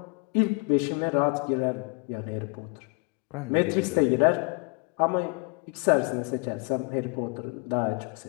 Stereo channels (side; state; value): right; quieter; 33.5 dB